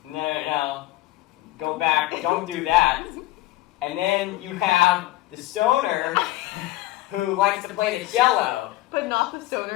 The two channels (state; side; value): quieter; right; 17.0 dB